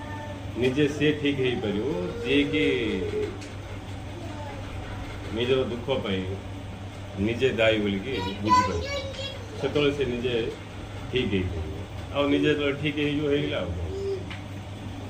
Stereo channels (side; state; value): both; identical; correlation 1.00